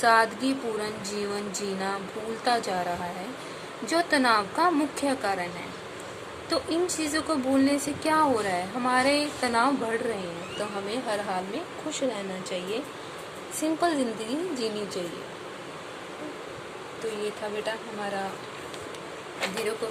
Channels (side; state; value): both; identical; correlation 1.00